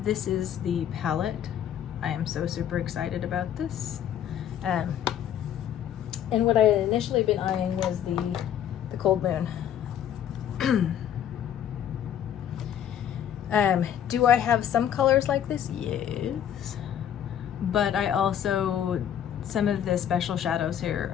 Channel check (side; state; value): right; quieter; 9.9 dB